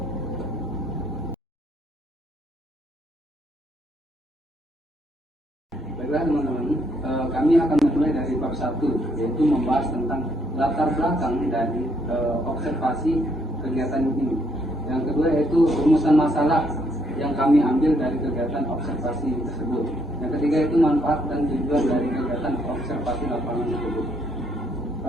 Baiklah teman-teman, kami akan memulai dari bab 1, yaitu membahas tentang latar belakang dari observasi kegiatan ini. Yang kedua yaitu rumusan masalah yang kami ambil dari kegiatan observasi tersebut. Yang ketiga itu manfaat dan tujuan dari kegiatan observasi lapangan tersebut.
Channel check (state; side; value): normal; both; correlation 0.72